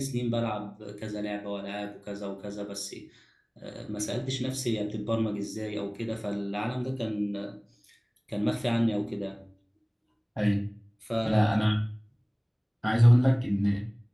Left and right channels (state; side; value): identical; both; correlation 1.00